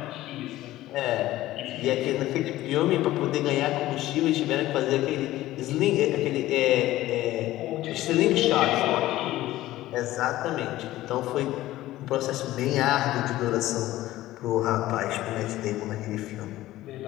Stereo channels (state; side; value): quieter; right; 15.7 dB